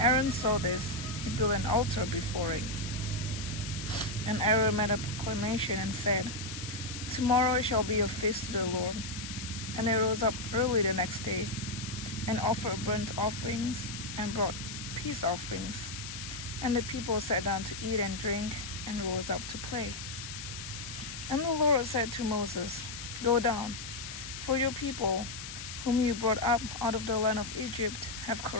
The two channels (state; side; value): noise; left; hiss, 9 dB below the sound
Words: saw this, he built an altar before it. And Aaron made a proclamation and said, "Tomorrow it shall be a feast to the Lord." And they rose up early the next day and offered burnt offerings and brought peace offerings. And the people sat down to eat and drink and rose up to play. And the Lord said to Moses, "Go down, for your people, whom you brought up out of the land of Egypt, have